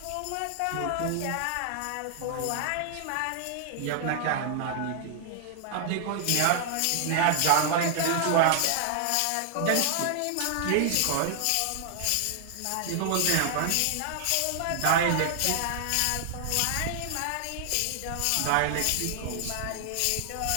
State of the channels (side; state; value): both; different; correlation 0.00